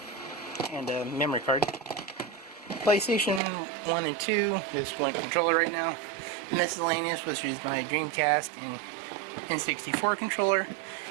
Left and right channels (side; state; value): left; drops out; at 3.4 s